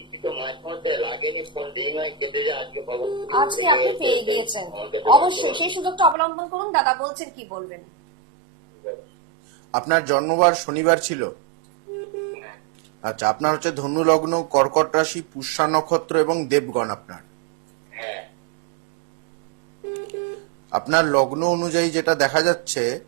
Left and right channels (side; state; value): left; drops out; at 6.2 s